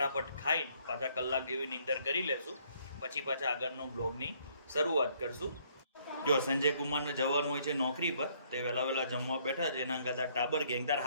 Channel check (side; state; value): both; inverted; correlation -0.66